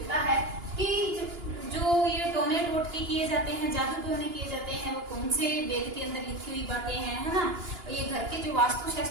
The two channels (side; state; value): left; late; 2.9 ms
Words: है कि जो ये टोने टोटके किए जाते हैं, जादू टोने किए जाते हैं, वो कौन से वेद के अंदर लिखी हुई बातें हैं, है ना। ये घर के जो